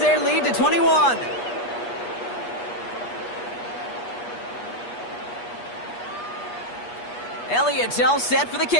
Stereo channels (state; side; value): late; right; 8.3 ms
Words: lead to 21. Elliott's all set for the